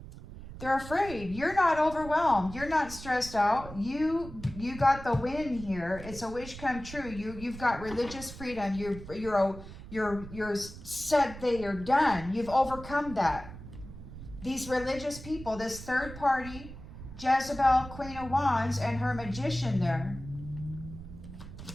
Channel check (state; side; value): noise; right; rumble, 13 dB below the sound